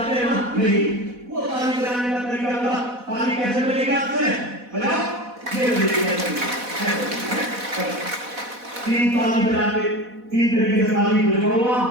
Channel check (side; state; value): left; late; 4.1 ms